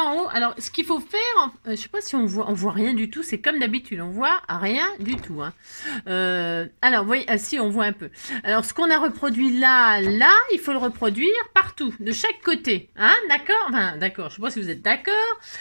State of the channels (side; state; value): both; inverted; correlation -1.00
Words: en haut. Alors, ce qu'il faut faire, je sais pas si on voit rien du tout, c'est comme d'habitude, on voit rien du tout. Hein. Alors, vous voyez, si, on voit un peu. Alors, ce qu'on a reproduit là, il faut le reproduire partout, de chaque côté. Hein, d'accord? Enfin, d'accord, je sais pas si vous êtes d'accord.